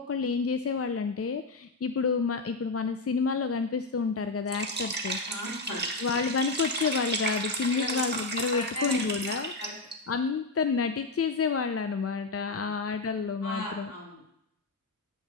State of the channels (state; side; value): quieter; right; 3.6 dB